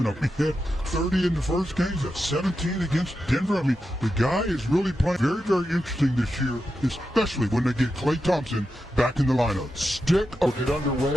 had 30 in the first game, that's 17 against Denver. I mean, the guy is really playing very, very interesting this year, especially when they get Klay Thompson back in the lineup. Stick will get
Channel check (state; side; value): normal; both; correlation 0.89